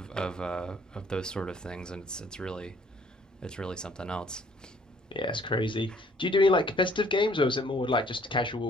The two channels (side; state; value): both; normal; correlation 0.60